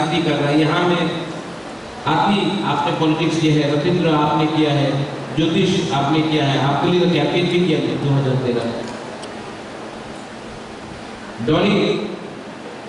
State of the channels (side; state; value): both; identical; correlation 1.00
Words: कर रहे हैं। यहाँ में आपने पॉलिटिक्स किया है, रविंद्र आपने किया है, ज्योतिष आपने किया है, आपके लिए तो कैंपेन भी किया है 2013। Dolly